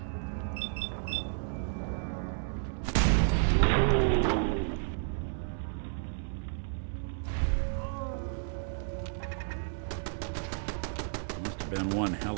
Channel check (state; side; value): silent; left; 56 dB below the other